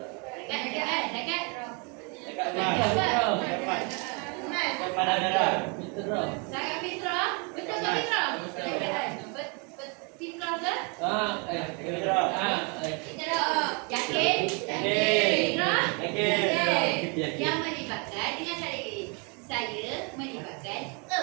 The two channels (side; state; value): left; quieter; 33.7 dB